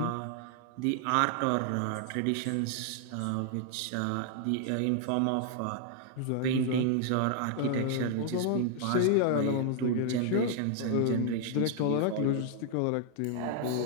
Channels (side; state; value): both; different; correlation 0.00